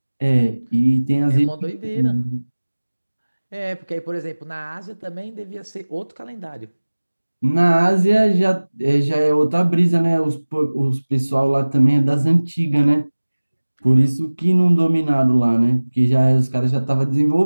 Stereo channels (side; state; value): both; inverted; correlation -1.00